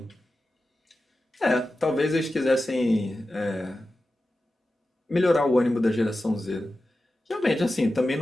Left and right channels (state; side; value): normal; both; correlation 0.93